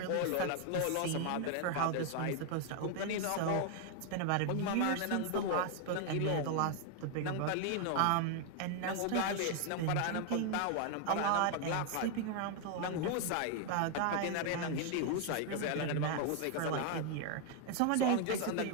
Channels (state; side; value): different; both; correlation 0.00